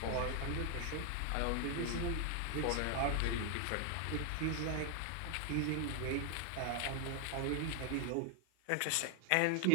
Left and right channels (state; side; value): different; both; correlation 0.00